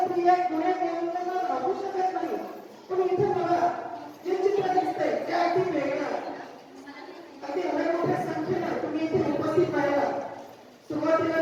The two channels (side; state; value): both; identical; correlation 1.00